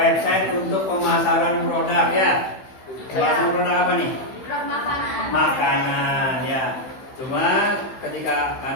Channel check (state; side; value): late; right; 16 ms